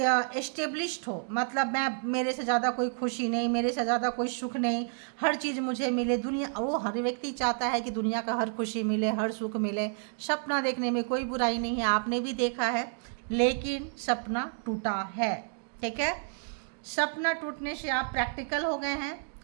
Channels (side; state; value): left; silent; 58 dB below the other